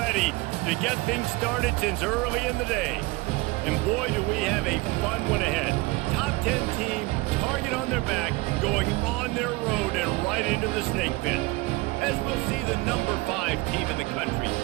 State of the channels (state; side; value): quieter; left; 22.8 dB